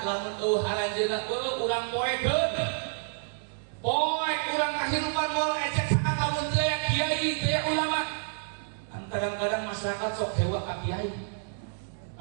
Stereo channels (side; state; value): left; silent; digital silence